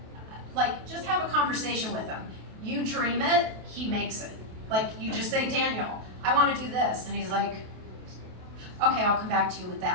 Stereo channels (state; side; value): late; left; 28 ms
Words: just have a conversation with him. You dream it, he makes it. You just say, Daniel, I want to do this, and he's like, okay, I'll come back to you with